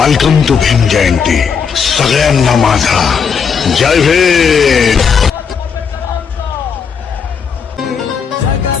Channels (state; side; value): quieter; right; 6.4 dB